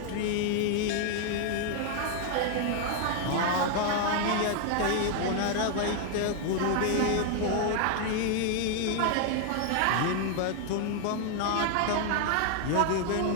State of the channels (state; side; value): different; both; correlation 0.00